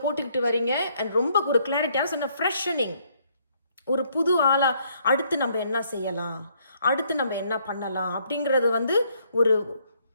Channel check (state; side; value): inverted; both; correlation -0.68